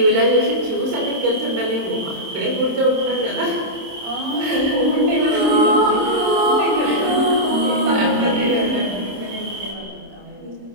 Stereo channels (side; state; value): left; late; 26 ms